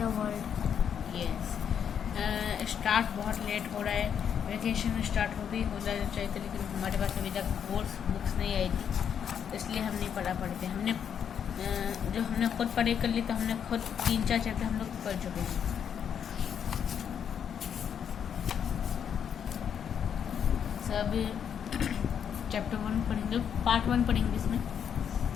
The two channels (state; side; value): quieter; right; 8.1 dB